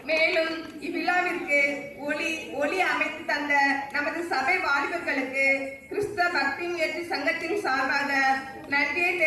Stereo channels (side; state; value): both; identical; correlation 1.00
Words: மேலும் இவ்விழாவிற்கு ஒளி அமைத்து தந்த நமது சபை வாலிபர்களுக்கு கிறிஸ்தவ பக்தி முயற்சி சங்கத்தின் சார்பாக நன்றியை